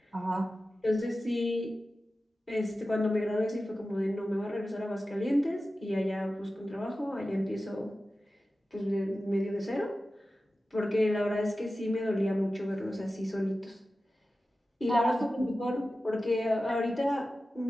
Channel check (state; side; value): normal; both; correlation 0.94